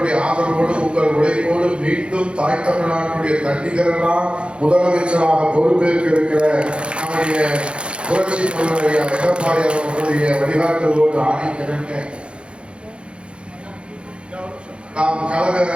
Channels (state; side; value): late; left; 0.057 ms